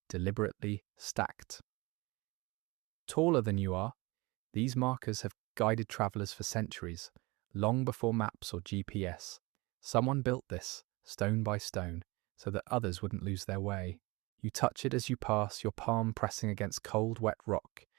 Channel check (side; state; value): left; quieter; 24.0 dB